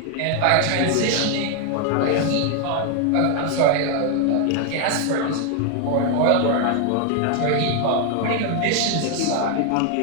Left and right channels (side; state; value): both; different; correlation 0.00